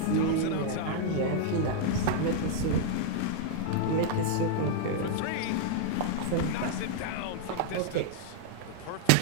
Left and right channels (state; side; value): different; both; correlation 0.00